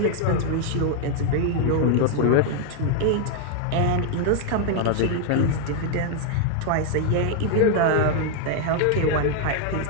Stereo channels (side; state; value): both; different; correlation 0.00